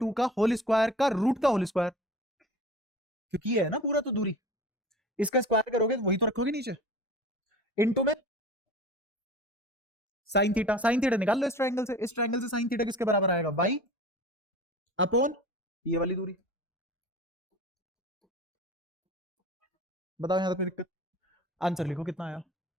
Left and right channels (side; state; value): both; normal; correlation 0.39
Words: का होल स्क्वायर का रूट का होल स्क्वायर, क्योंकि ये है ना पूरा तो दूरी, इसका स्क्वायर करोगे तो वही तो रखोगे नीचे, इनटू में साइन थीटा, साइन थीटा निकाल लो इस ट्रायंगल से, इस ट्रायंगल से साइन थीटा किसके बराबर आएगा, वाई अपोन ये वाली दूरी। बताओ यहां तक कोई दिक्कत? आंसर लिखो कितना आया,